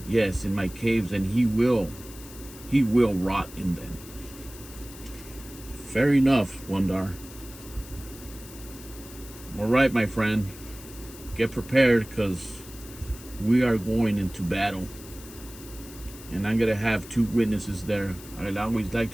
Yes, in my caves, and he will rot in them. Fair enough, Wundar. All right, my friend, get prepared, because we are going into battle. And I'm gonna have 2 witnesses there. I always like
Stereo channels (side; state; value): left; noise; hiss, 17 dB below the sound